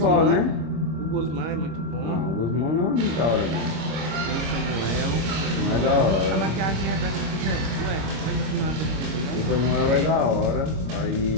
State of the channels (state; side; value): late; left; 26 ms